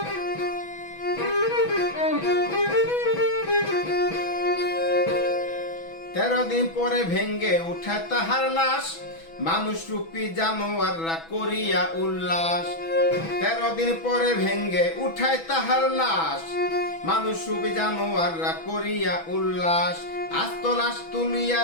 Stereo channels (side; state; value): right; late; 6.1 ms